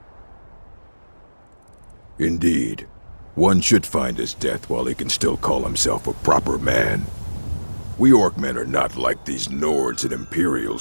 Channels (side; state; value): both; inverted; correlation -1.00